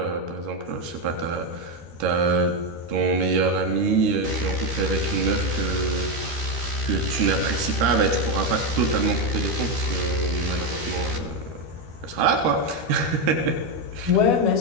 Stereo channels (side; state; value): left; late; 13 ms